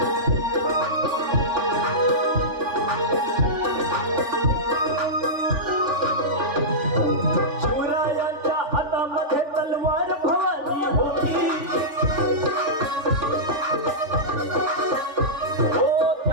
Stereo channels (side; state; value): left; late; 3.4 ms